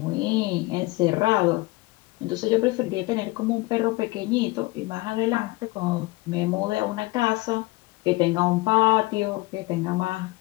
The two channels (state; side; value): quieter; right; 21.8 dB